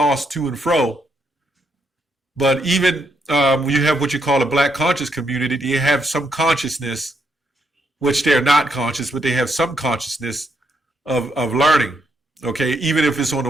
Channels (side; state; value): both; normal; correlation 0.77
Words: to and fro. But even when you have what you call a black conscious community, they have some consciousness, which they're not conscious, but they have some consciousness of learning, okay? Even if it's on